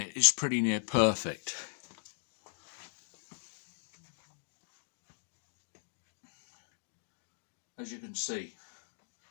is pretty near perfect. As you can see.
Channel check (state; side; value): silent; right; digital silence